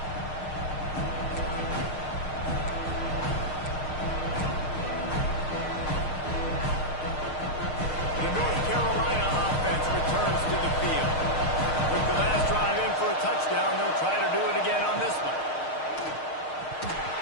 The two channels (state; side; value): late; right; 6.5 ms